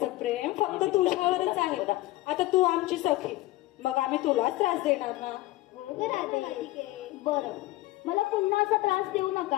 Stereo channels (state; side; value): quieter; right; 17.9 dB